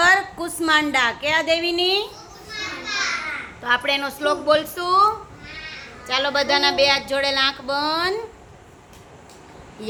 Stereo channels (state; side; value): identical; both; correlation 1.00